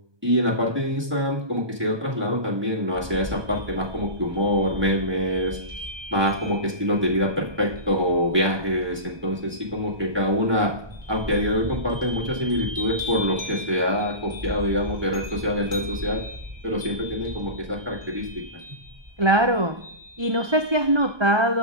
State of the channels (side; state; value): left; late; 1.2 ms